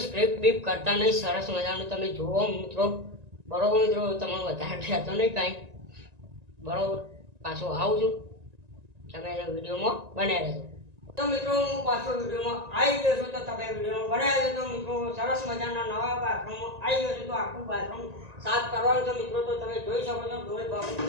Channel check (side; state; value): left; late; 1.9 ms